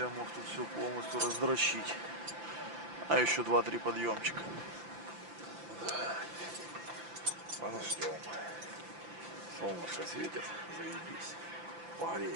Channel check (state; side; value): late; left; 5.8 ms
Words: мог тут все полностью раздрочить. А еще 2-3 подъемчика. Подождем. Солнышко светит, заебись.